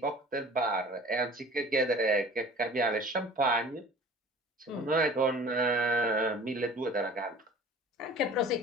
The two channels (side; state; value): both; normal; correlation 0.43